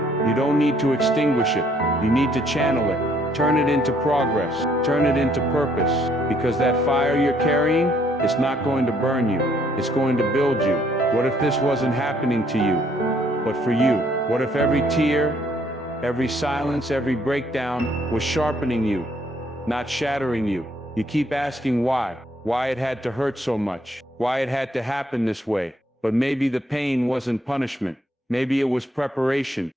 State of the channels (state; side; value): normal; both; correlation 0.67